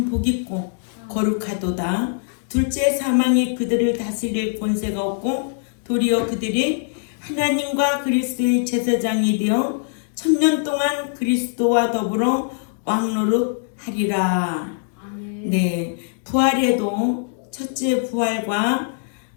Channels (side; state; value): right; silent; digital silence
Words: 복있고 거룩하도다. 둘째 사망이 그들을 다스릴 권세가 없고 도리어 그들이 하나님과 그리스도의 제사장이 되어 1000년 동안 그리스도와 더불어 왕노릇하리라. 네, 부활에도 첫째 부활과